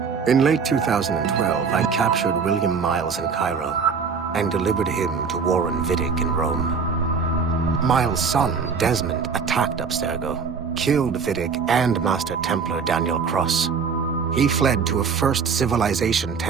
In late 2012, I captured William Miles in Cairo and delivered him to Warren Vidic in Rome. Miles' son, Desmond, attacked Abstergo, killed Vidic and Master Templar Daniel Cross. He fled to a First Civilization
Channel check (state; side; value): quieter; left; 5.7 dB